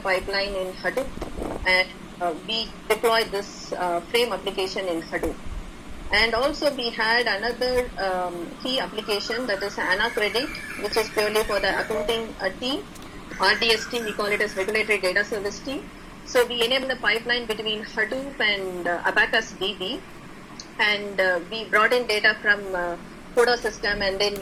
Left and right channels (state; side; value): identical; both; correlation 1.00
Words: pipeline in Hadoop, and we deployed this frame application in Hadoop. And also we had another key application, that is AnaCredit, which is purely for the accounting team. RDS team, we call it as Regulatory Data Service team. So we enable the pipeline between Hadoop and Abacus DB, and we brought in data from CODA system, and then